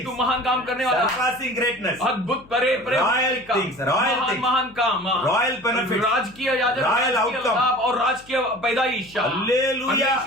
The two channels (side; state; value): left; noise; hum, 25 dB below the sound